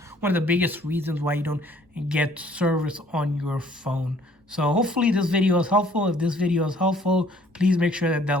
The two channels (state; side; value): normal; both; correlation 0.59